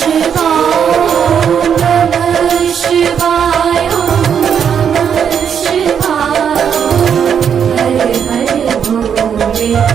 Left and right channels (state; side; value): quieter; left; 7.8 dB